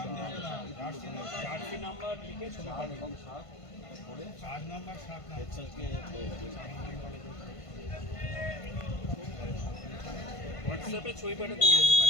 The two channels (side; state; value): right; late; 1.5 ms